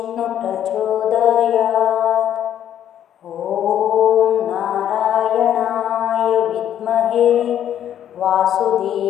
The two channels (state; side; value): quieter; right; 10.4 dB